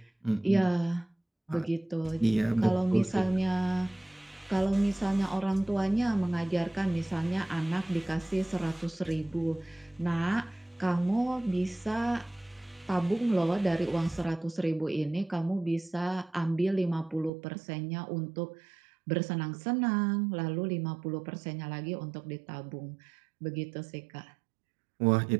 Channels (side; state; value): left; drops out; at 17.3 s